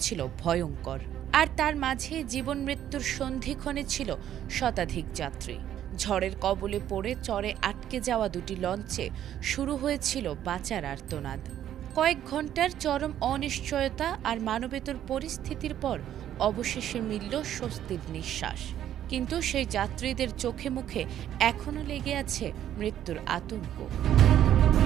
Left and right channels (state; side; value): quieter; left; 11.1 dB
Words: ভয়ঙ্কর। আর তার মাঝে জীবন মৃত্যুর সন্ধিক্ষণে ছিল শতাধিক যাত্রী। ঝড়ের কবলে পড়ে চরে আটকে যাওয়া দুটি লঞ্চে শুরু হয়েছিল বাঁচার আর্তনাদ। কয়েক ঘন্টার চরম অনিশ্চয়তা আর মানবেতর পরিস্থিতির পর অবশেষে মিলল স্বস্তির নিঃশ্বাস। কিন্তু সেই যাত্রীদের চোখে মুখে এখনো লেগে আছে মৃত্যুর আতঙ্ক।